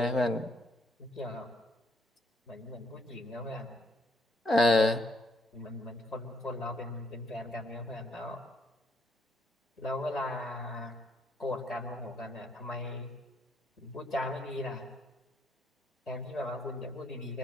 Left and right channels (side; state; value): both; normal; correlation 0.71